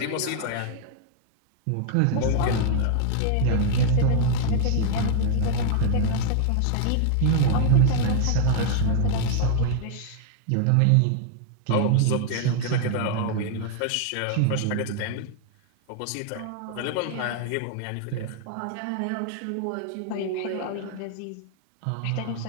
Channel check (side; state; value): both; different; correlation -0.01